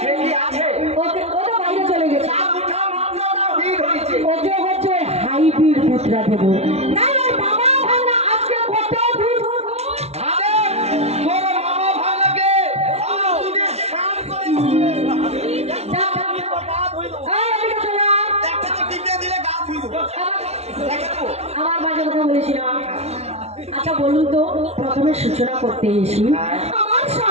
ওকে ও তো বাইরে চলে গেছে ওকে হচ্ছে ওই হাইব্রিড দুধটা দেবো না ওর বাবা ভাগনা আজকে কত দুধ আমার বাজে কথা বলেছি না আচ্ছা বলুন তো প্রথমে সূচনা করতে এসি আমার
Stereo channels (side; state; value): left; late; 0.31 ms